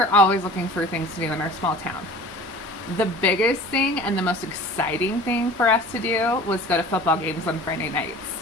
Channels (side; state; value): both; normal; correlation 0.42